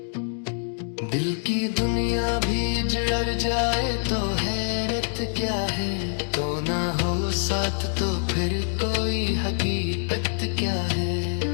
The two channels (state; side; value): silent; right; digital silence